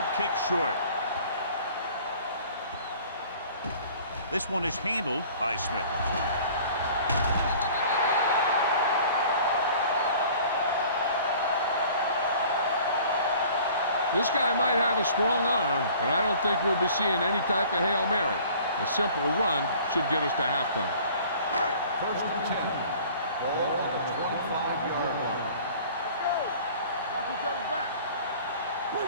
kick short. This one is handled by Smith. This guy might have a strong arm, but I don't think we'll be seeing any type of Hail Mary. A simple run should get us to halftime. First and 10. Ball on the 25-yard line. Watch each other back.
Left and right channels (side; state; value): both; inverted; correlation -0.49